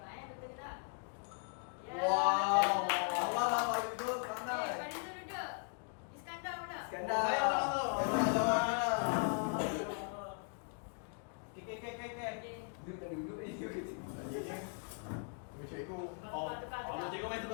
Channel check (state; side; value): silent; right; 52 dB below the other